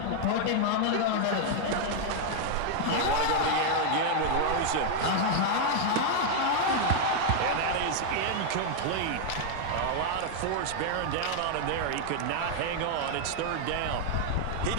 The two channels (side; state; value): both; different; correlation 0.00